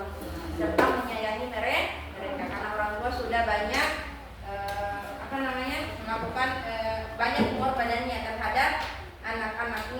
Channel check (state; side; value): identical; both; correlation 1.00